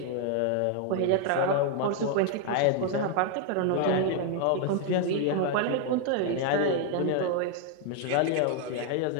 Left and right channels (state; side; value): different; both; correlation 0.00